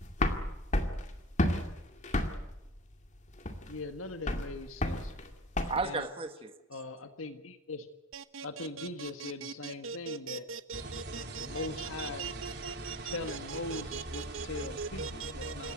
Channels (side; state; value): both; normal; correlation 0.36